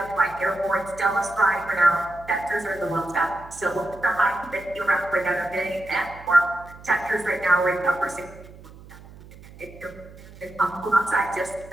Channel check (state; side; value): noise; right; hum, 19 dB below the sound